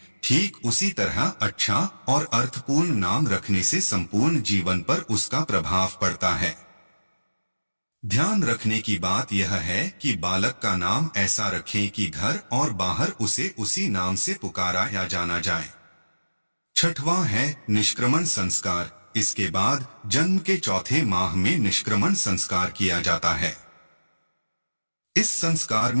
ठीक उसी तरह अच्छा और अर्थपूर्ण नाम रखने से संपूर्ण जीवन पर उसका प्रभाव पड़ता है। ध्यान रखने की बात यह है कि बालक का नाम ऐसा रखें कि घर और बाहर उसे उसी नाम से पुकारा या जाना जाए। छठवां है निष्क्रमण संस्कार। इसके बाद जन्म के चौथे माह में निष्क्रमण संस्कार किया जाता है। इस संस्कार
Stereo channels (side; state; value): both; inverted; correlation -1.00